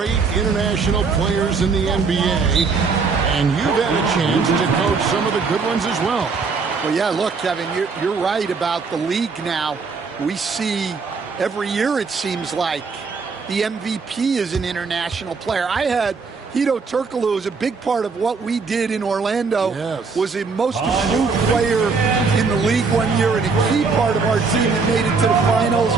international players in the NBA. And you've had a chance to coach some of the good ones as well. Well, yeah, look, Kevin, you're right about the league now. We see every year, it seems like, the MVP is an international player. I had Hedo Turkoglu as a big part of what we did in Orlando. Yes. Was the most improved player in the league one year and a key part of our team that made it to the finals.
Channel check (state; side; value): quieter; left; 4.8 dB